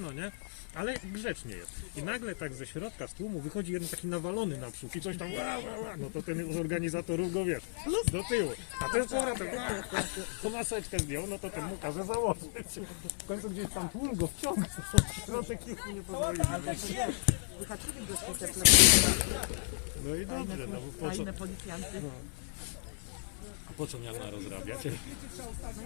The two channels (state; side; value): silent; right; 55 dB below the other